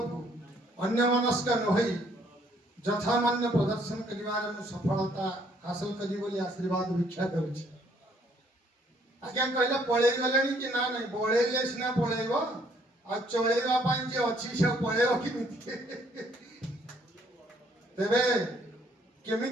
को अन्यमनस्क नहई यथामान्य प्रदर्शन करिवार सफलता हासिल करी बोली आशीर्वाद भिक्षा करुछि। आज्ञा कहले पळेई गलेनी कि ना नहीं बळेले सिना पळेइबो आ चळेइबा पई जे अछि से पळेइबो किमिति तेबे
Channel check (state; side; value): normal; both; correlation 0.65